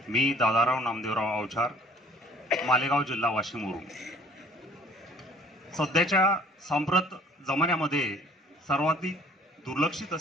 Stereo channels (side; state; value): both; normal; correlation 0.55